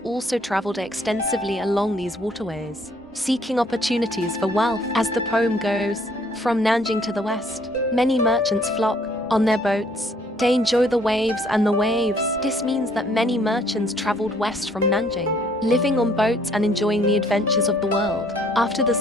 also traveled extensively along these waterways, seeking opportunities for wealth. As the poem goes, from Nanjing to the west, many merchants flock on their boats. They enjoy the waves and the waves. This means that many merchants traveled west from Nanjing, living on boats and enjoying the adventures of the world. After the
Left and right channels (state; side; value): normal; both; correlation 0.62